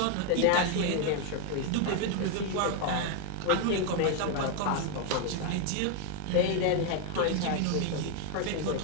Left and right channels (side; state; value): both; different; correlation 0.01